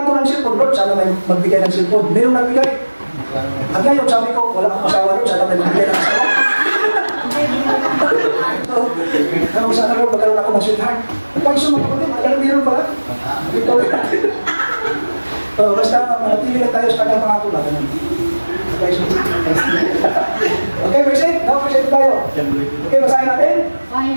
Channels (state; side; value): inverted; both; correlation -1.00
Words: ko ng cellphone, Lord, sana may magbigay ng cellphone. Mayroong nagbigay. At ngayon, sabi ko, wala akong asawa, Lord, sana may magbigay ng asawa. Kung sana Lord, magkaroon ako ng sweetheart. Pag sumagot, magkaroon meron pala. Basta manatili lang tayo sa kanyang pangako na. Okay, verse 8. Now, verse 8 tayo. Okay, basahin natin.